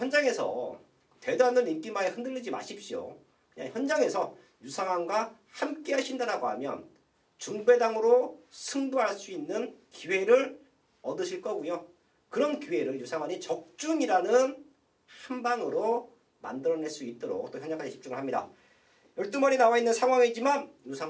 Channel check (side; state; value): both; identical; correlation 1.00